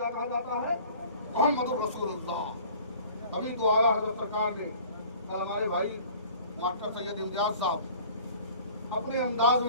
کہا جاتا ہے؟ محمد رسول اللہ۔ ابھی تو اعلیٰ حضرت سرکار نے کل ہمارے بھائی ماسٹر سید امتیاز صاحب اپنے انداز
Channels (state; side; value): inverted; both; correlation -0.48